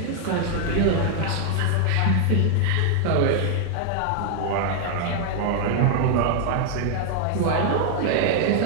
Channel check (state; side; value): different; both; correlation 0.00